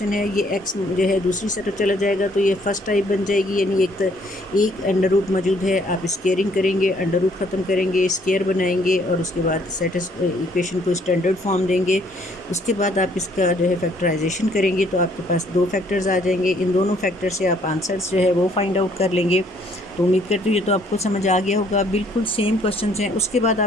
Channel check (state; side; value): normal; both; correlation 0.64